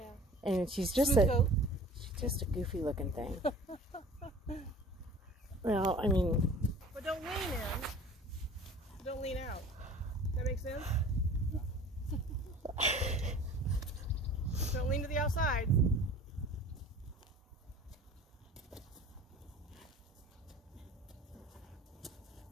And she's just a goofy-looking thing. Well, I mean. But don't lean in. Don't lean out. Does that make sense? Don't lean to the outside.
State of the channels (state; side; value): normal; both; correlation 0.45